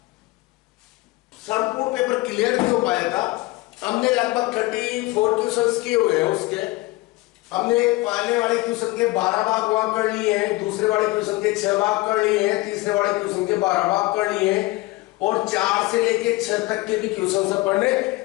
संपूर्ण पेपर क्लियर नहीं हो पाया था। हमने लगभग 34 क्वेश्चंस किए हुए हैं उसके। हमने पहले वाले क्वेश्चन के 12 भाग वहां कर लिए हैं, दूसरे वाले क्वेश्चन के 6 भाग कर लिए हैं, तीसरे वाले क्वेश्चन के 12 भाग कर लिए हैं और 4 से लेके 6 तक के भी क्वेश्चन पढ़ने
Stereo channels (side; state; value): right; quieter; 20.9 dB